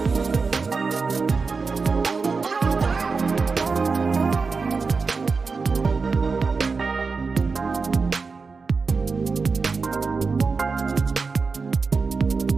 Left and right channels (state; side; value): quieter; left; 4.6 dB